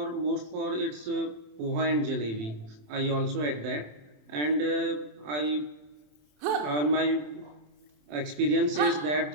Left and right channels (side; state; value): left; late; 27 ms